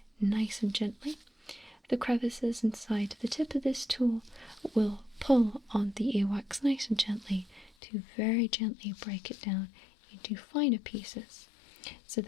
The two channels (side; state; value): right; drops out; at 7.7 s